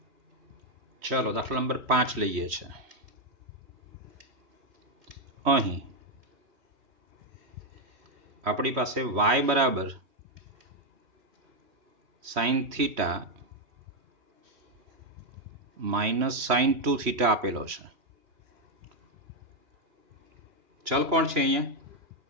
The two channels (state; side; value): late; left; 3.1 ms